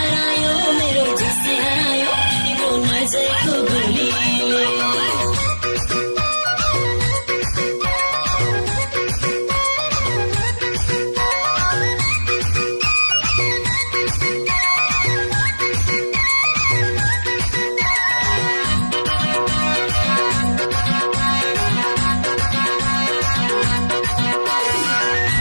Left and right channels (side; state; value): both; inverted; correlation -1.00